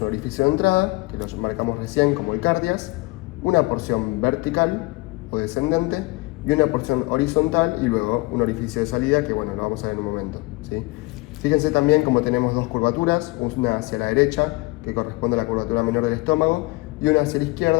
orificio de entrada, que lo marcamos recién como el cardias, una porción vertical o descendente y una porción horizontal y luego un orificio de salida que bueno, lo vamos a ver en un momento, ¿sí? Fíjense también como tenemos dos curvaturas, una hacia la derecha que corresponde a la curvatura menor del estómago y una hacia la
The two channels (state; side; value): quieter; right; 23.6 dB